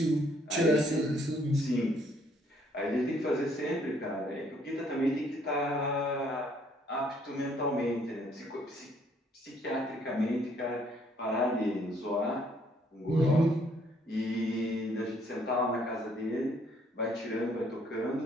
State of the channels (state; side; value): normal; both; correlation 0.65